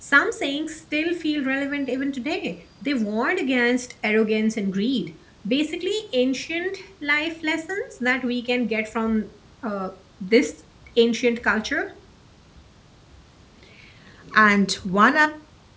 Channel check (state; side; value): identical; both; correlation 1.00